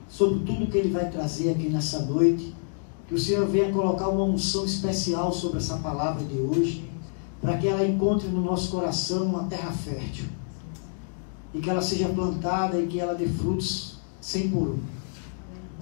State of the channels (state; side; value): silent; right; digital silence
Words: sobre tudo que ele vai trazer aqui nessa noite. Que o Senhor venha colocar uma unção especial sobre essa palavra de hoje, para que ela encontre no nosso coração uma terra fértil, e que ela seja plantada e que ela dê frutos 100 por 1.